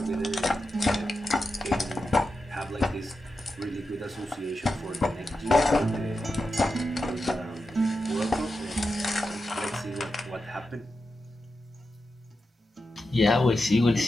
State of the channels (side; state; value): both; normal; correlation 0.90